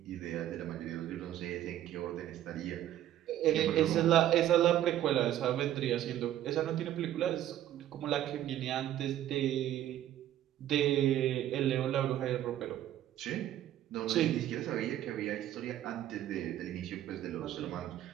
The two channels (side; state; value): left; quieter; 12.3 dB